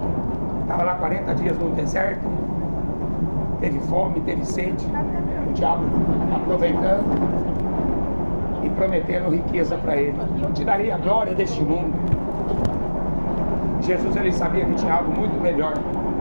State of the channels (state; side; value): inverted; both; correlation -1.00